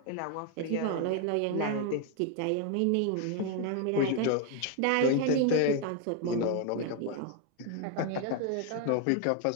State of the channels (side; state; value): both; different; correlation 0.01